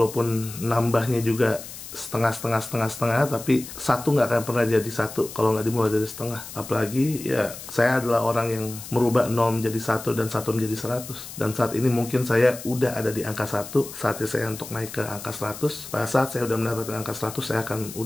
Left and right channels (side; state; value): left; noise; hiss, 12 dB below the sound